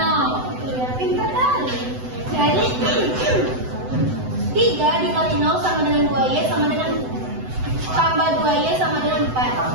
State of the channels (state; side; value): late; left; 7.9 ms